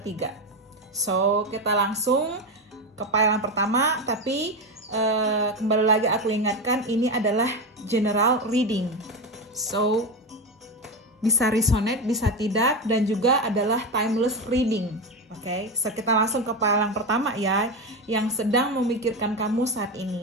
So, kita langsung ke pile yang pertama, tapi kembali lagi aku ingatkan ini adalah general reading. So, bisa resonate, bisa tidak, dan juga adalah timeless reading. Oke, so kita langsung ke pile yang pertama ya, yang sedang memikirkan kamu saat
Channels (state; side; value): normal; both; correlation 0.16